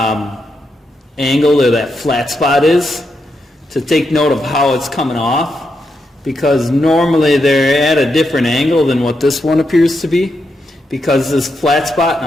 angle or that flat spot is to take note of how it's coming off, because normally they're at a different angle than what this one appears to be, because this flat spot, and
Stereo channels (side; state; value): both; normal; correlation 0.83